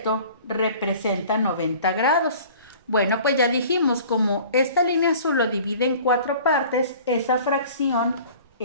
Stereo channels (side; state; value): both; inverted; correlation -0.46